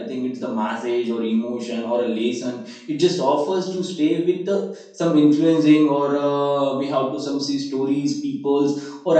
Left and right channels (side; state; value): both; identical; correlation 1.00